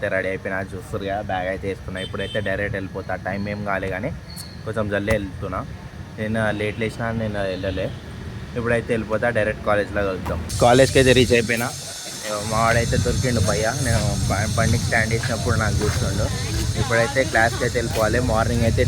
రెడీ అయిపోయినా, చూస్తారు కదా బ్యాగ్ అయితే వేసుకున్నా. ఇప్పుడైతే డైరెక్ట్ వెళ్ళిపోతా. టైం ఏం కాలే కానీ కొంచెం జల్దీ వెళ్తున్నా. నేను లేట్ లేచినా, నేను వెళ్ళలే. ఇప్పుడైతే వెళ్ళిపోతా, డైరెక్ట్ కాలేజ్లో కలుద్దాం. కాలేజ్కి అయితే రీచ్ అయిపోయినా. మా వాడైతే దొరికిండు భయ్య. నేను బండికి స్టాండ్ చేసినప్పుడు నాకు చూస్తుండు. ఇప్పుడైతే క్లాస్కి అయితే వెళ్ళిపోవాలి. మార్నింగ్ అయితే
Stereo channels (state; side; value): identical; both; correlation 1.00